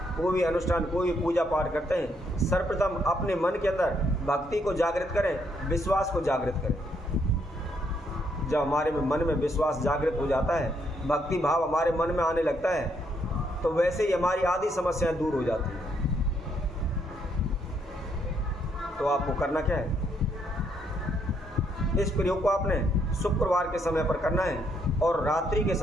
कोई भी अनुष्ठान, कोई भी पूजा पाठ करते हैं, सर्वप्रथम अपने मन के अंदर भक्ति को जागृत करें, विश्वास को जागृत करें। जब हमारे मन में विश्वास जागृत हो जाता है, भक्ति भाव हमारे मन में आने लगता है, तो वैसे ही हमारी आधी समस्याएं दूर हो जाती हैं। तो आपको करना क्या है, इस प्रयोग को आपने शुक्रवार के समय पर करना है और रात्रि के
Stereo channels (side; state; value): both; normal; correlation 0.73